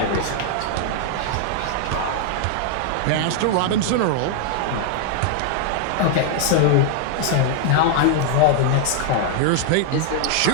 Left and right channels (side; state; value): both; different; correlation 0.00